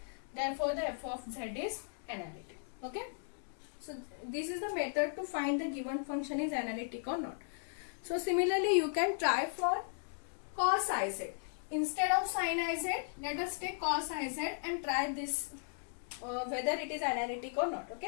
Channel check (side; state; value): right; silent; digital silence